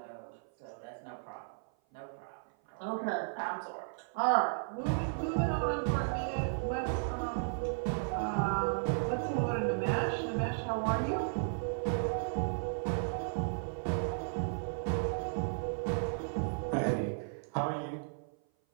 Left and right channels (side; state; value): left; silent; 55 dB below the other